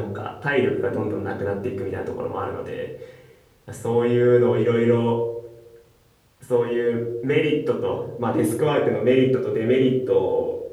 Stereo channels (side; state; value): both; identical; correlation 1.00